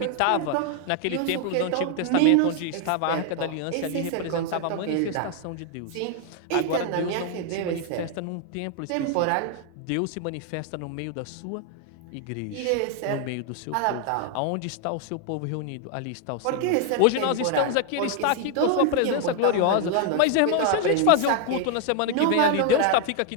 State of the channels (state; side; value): different; both; correlation 0.00